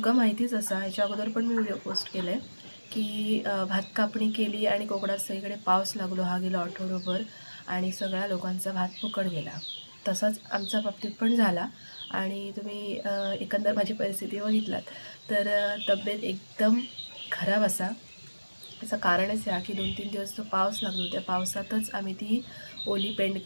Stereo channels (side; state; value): both; inverted; correlation -1.00